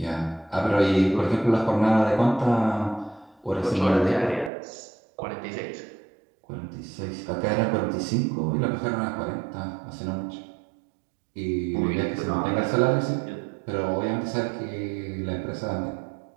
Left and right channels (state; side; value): drops out; left; at 4.5 s